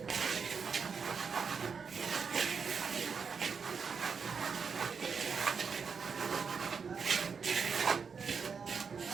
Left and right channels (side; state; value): left; quieter; 5.8 dB